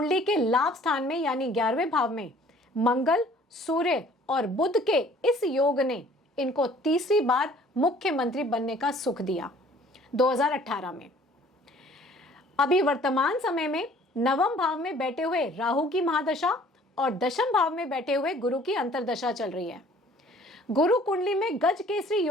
के लाभ स्थान में यानी 11वें भाव में मंगल, सूर्य और बुध के इस योग ने इनको तीसरी बार मुख्यमंत्री बनने का सुख दिया 2018 में। अभी वर्तमान समय में नवम भाव में बैठे हुए राहु की महादशा और दशम भाव में बैठे हुए गुरु की अंतर्दशा चल रही है। गुरु कुंडली में गज केसरी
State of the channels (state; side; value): normal; both; correlation 0.54